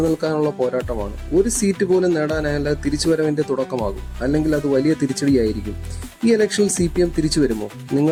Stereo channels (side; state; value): both; identical; correlation 1.00